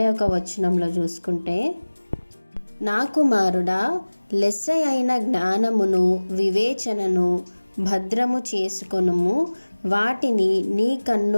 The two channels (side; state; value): both; inverted; correlation -1.00